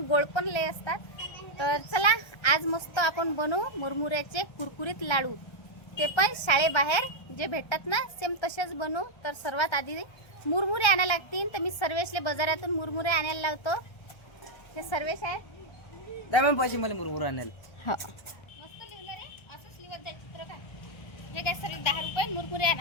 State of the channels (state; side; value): late; right; 1.3 ms